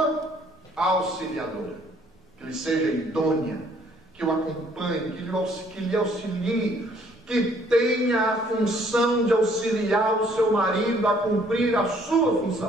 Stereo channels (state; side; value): normal; both; correlation 0.62